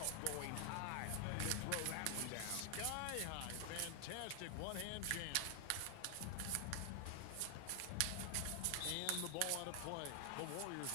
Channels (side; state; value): both; different; correlation 0.00